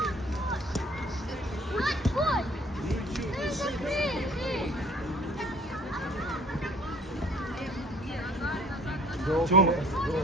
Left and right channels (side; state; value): both; normal; correlation 0.53